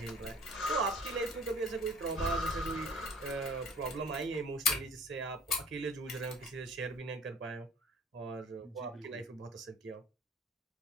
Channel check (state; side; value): normal; both; correlation 0.47